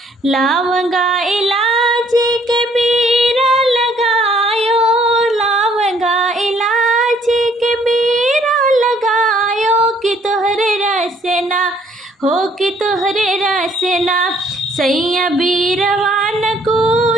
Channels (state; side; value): normal; both; correlation 0.63